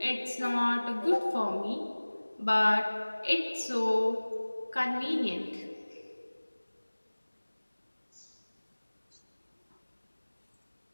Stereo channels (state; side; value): inverted; both; correlation -1.00